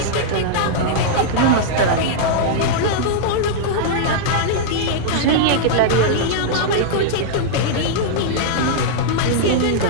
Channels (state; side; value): different; both; correlation -0.02